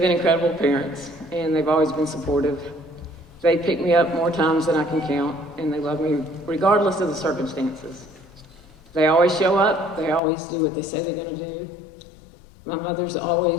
incredible parents, and they've always been supportive. They pick me up more times than I can count, and they love me regardless of the circumstances. They always show up. They always do what they say they're going to do. My mother's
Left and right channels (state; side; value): drops out; right; at 10.2 s